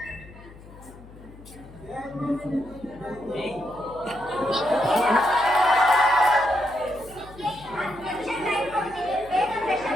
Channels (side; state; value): left; noise; hum, 19 dB below the sound